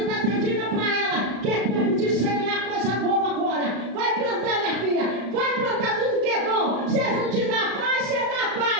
está pedindo para ela que é tempo de semear coisa boa agora. Vai plantar, minha filha. Vai plantar tudo que é bom. Se não te dá paz, você dá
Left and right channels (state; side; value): late; left; 35 ms